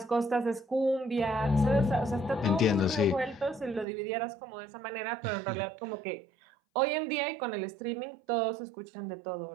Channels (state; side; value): drops out; left; at 3.9 s